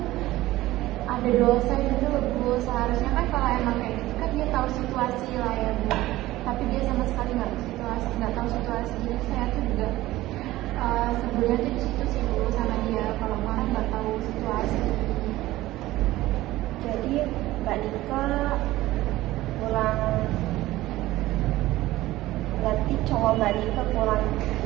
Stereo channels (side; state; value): left; quieter; 16.8 dB